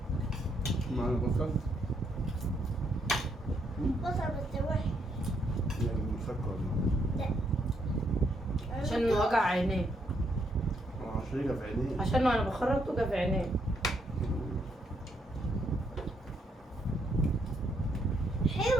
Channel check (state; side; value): normal; both; correlation 0.74